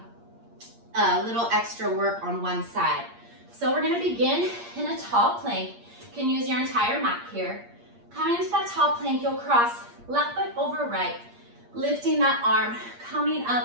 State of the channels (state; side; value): late; left; 8.6 ms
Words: a little extra work on one side. So we're gonna begin in a tall plank. You can use your entire mat here. Coming into that tall plank, you'll cross left foot over right, lifting that arm, coming